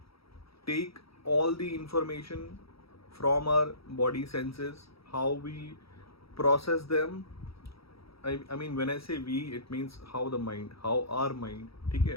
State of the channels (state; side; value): late; right; 0.76 ms